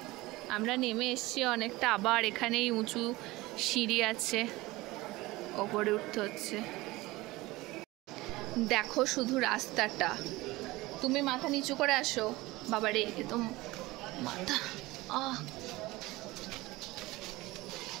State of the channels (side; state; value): left; quieter; 20.1 dB